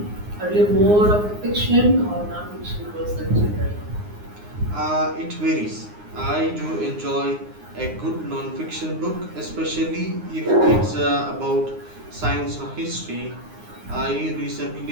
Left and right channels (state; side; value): late; left; 9.6 ms